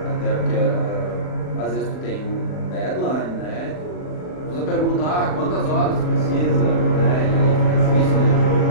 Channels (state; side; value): late; right; 39 ms